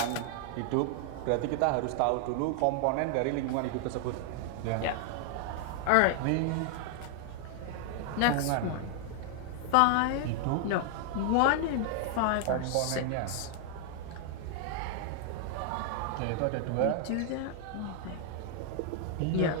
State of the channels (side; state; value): both; different; correlation 0.00